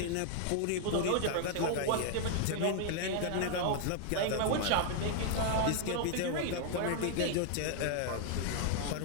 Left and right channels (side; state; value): both; different; correlation 0.00